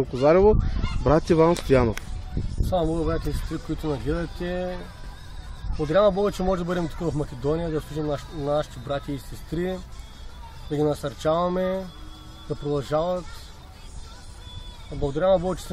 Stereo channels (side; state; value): both; identical; correlation 1.00